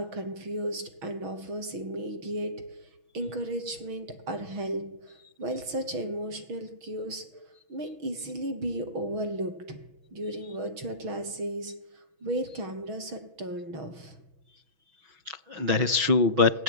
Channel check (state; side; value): late; left; 6.2 ms